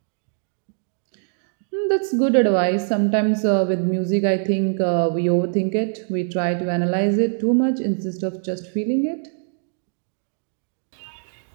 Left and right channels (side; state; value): left; silent; digital silence